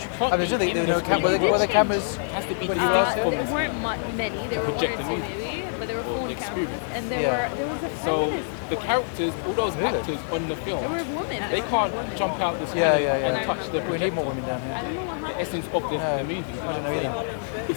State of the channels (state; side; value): silent; right; digital silence